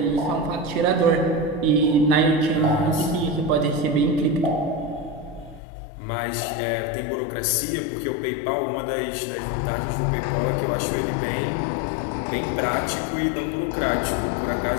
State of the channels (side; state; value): right; drops out; at 5.6 s